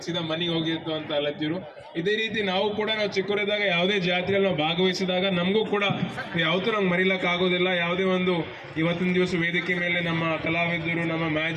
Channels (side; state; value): both; identical; correlation 1.00